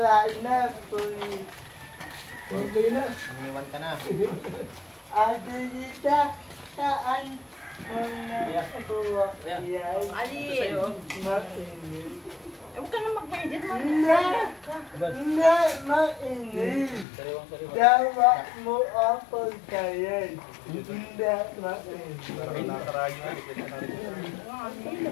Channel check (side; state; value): right; drops out; at 17.1 s